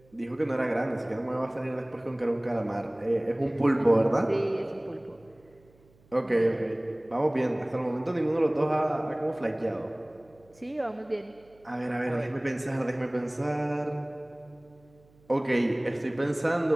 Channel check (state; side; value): noise; right; hum, 30 dB below the sound